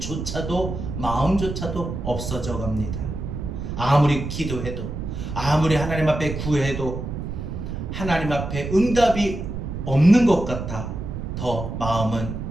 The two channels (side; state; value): right; noise; rumble, 6 dB below the sound